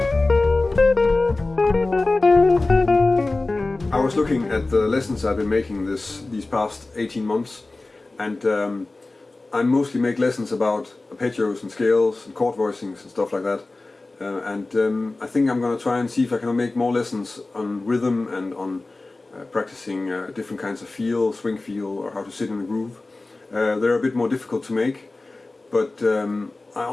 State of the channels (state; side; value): quieter; right; 3.2 dB